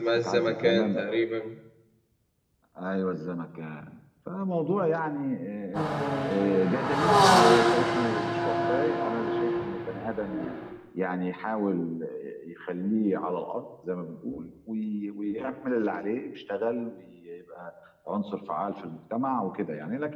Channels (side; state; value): both; identical; correlation 1.00